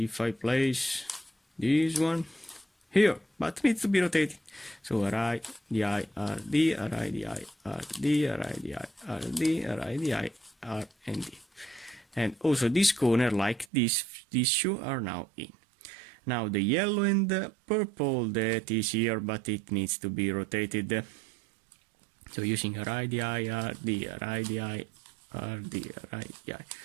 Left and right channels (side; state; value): left; drops out; at 13.7 s